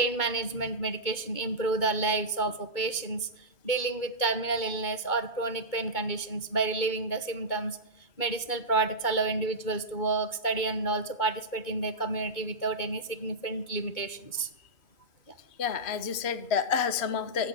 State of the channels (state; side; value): late; right; 2.2 ms